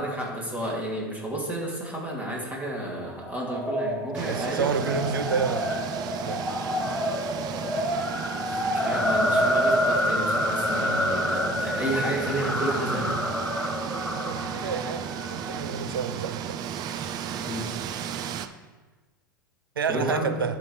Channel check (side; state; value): both; normal; correlation 0.44